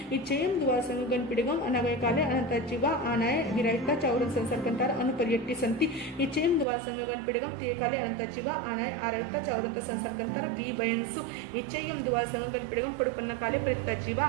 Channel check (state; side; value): drops out; left; at 6.7 s